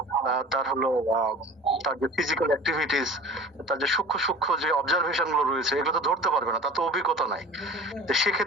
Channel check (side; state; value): both; normal; correlation 0.40